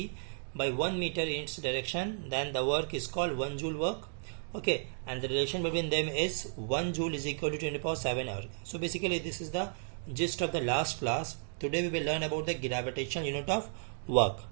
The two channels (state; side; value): silent; left; digital silence